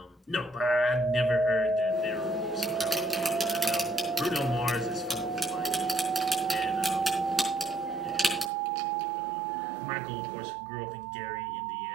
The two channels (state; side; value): drops out; left; at 8.5 s